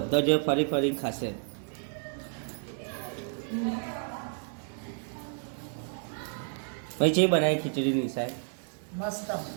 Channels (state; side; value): silent; left; 57 dB below the other